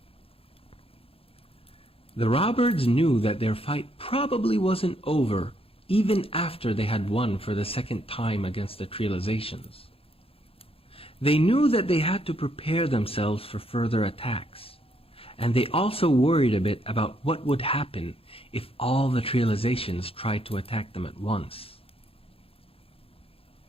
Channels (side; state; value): right; late; 0.27 ms